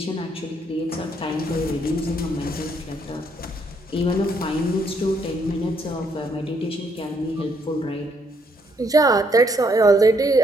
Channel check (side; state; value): both; normal; correlation 0.71